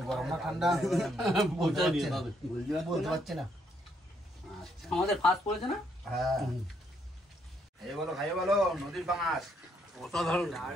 গরম না ঠান্ডা বলতে পারছি না। আচ্ছা, আমাদের ফাস্ট পড়েছে না? হ্যাঁ, খাইয়ে বলো নদীর পাঙাশ। অসাধারণ।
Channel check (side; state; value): both; normal; correlation 0.73